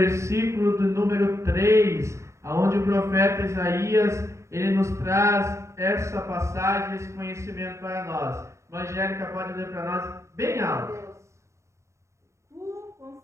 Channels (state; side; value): late; left; 0.14 ms